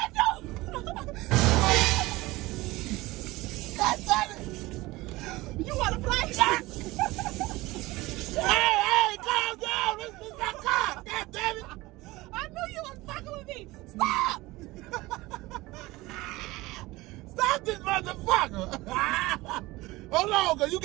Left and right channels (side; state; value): left; quieter; 20.2 dB